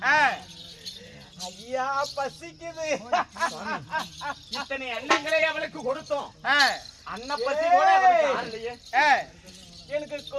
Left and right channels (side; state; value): both; identical; correlation 1.00